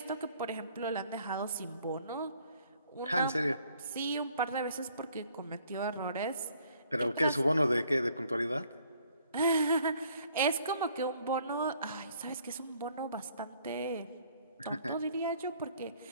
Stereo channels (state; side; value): inverted; both; correlation -0.62